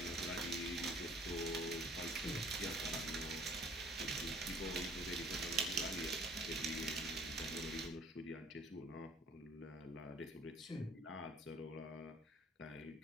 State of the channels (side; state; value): both; normal; correlation 0.53